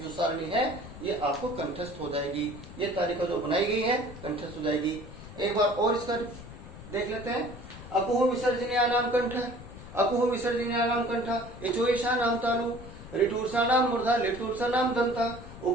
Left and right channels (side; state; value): left; noise; rumble, 14 dB below the sound